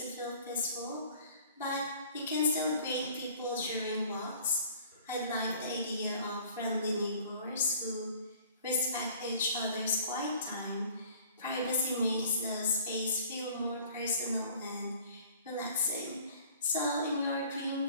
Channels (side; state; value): both; inverted; correlation -0.51